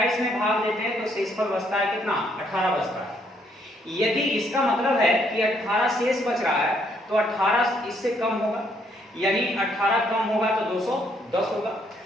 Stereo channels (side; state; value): both; normal; correlation 0.70